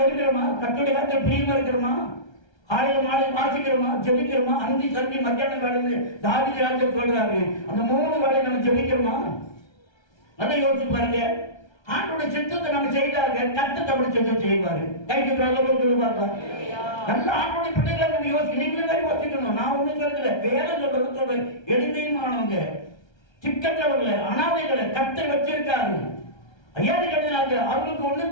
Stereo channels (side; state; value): right; late; 1.3 ms